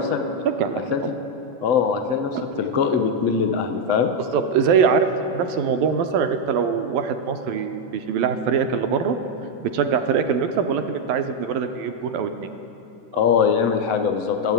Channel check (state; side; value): late; left; 12 ms